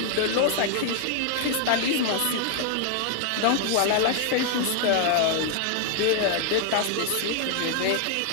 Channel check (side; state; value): both; different; correlation 0.00